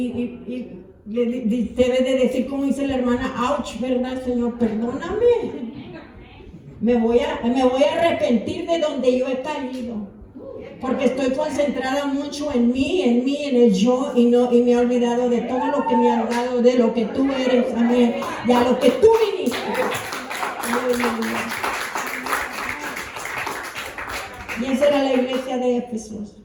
debe de decir, como dice la hermana, ouch, ¿verdad, Señor? Perdóname. Me voy a arrepentir de donde yo he caído. Porque estoy concentrada mucho en mí, en el yo, y me he olvidado de todo lo que me ha dado, de lo que tú eres, amén, y a lo que tú viniste. Aleluya. Y esa era la iglesia de Éfesos.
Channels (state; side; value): identical; both; correlation 1.00